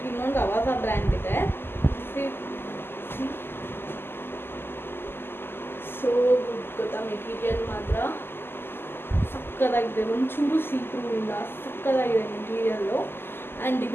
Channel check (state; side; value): late; right; 0.11 ms